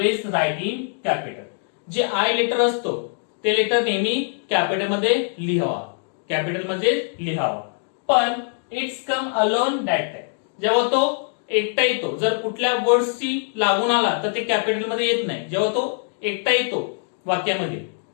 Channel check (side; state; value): right; silent; 58 dB below the other